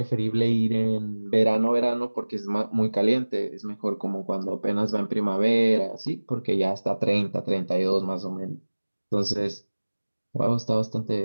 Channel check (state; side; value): inverted; both; correlation -1.00